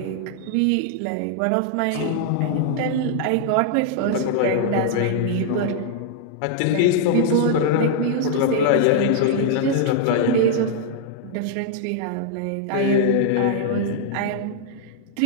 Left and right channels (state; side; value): different; both; correlation -0.01